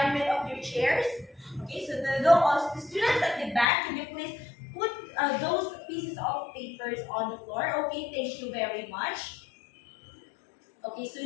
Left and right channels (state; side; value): drops out; right; at 3.7 s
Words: of your chairs? Okay, so the students at the back, can you please put those pieces of papers on the floor? Okay, thank you very much. Okay, so